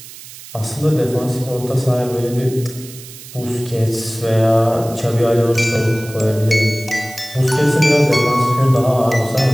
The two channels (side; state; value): right; noise; hiss, 16 dB below the sound